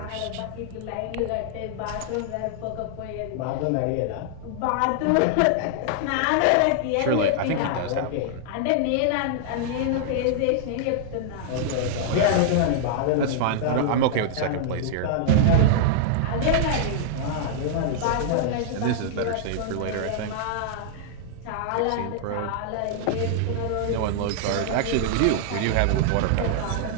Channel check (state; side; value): different; both; correlation -0.01